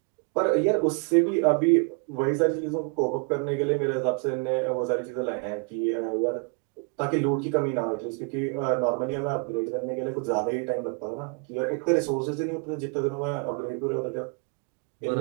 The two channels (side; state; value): left; quieter; 36.1 dB